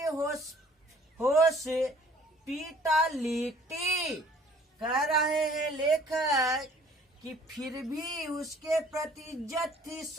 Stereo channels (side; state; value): both; normal; correlation 0.55